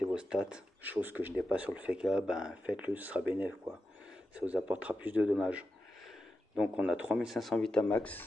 vos stats, chose que je n'ai pas sur le FK, faites-le, ce sera bénéf quoi. Ça vous apportera plus de dommages. Donc on a 3500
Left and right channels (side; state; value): both; normal; correlation 0.90